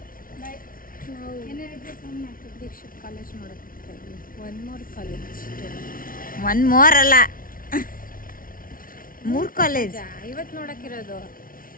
ದೀಕ್ಷಿತ್ ಕಾಲೇಜ್ ನೋಡೋಕ್ಕೆ one more college. One more ಅಲ್ಲ, 3 ಕಾಲೇಜ್ ಇವತ್ತು ನೋಡೋಕ್ಕಿರೋದು.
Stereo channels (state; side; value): late; right; 0.41 ms